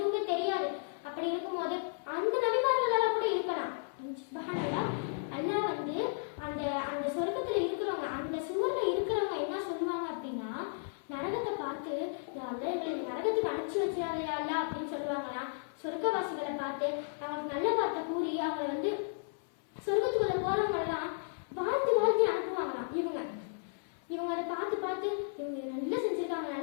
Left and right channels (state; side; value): silent; right; 55 dB below the other